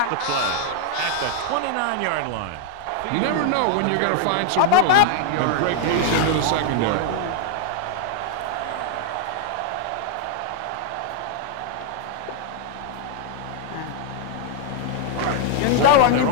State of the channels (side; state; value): both; different; correlation 0.00